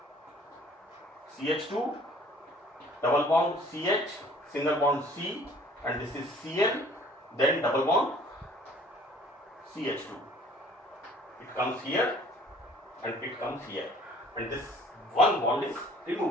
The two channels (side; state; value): both; normal; correlation 0.53